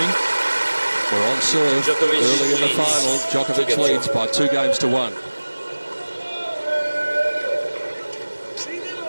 We're on serve early in the final. Djokovic leads by 2-1.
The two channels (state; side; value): inverted; both; correlation -1.00